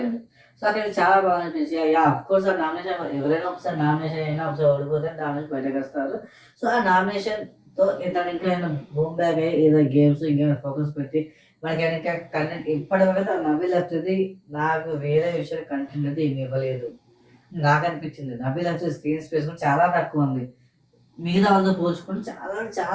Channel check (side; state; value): both; identical; correlation 1.00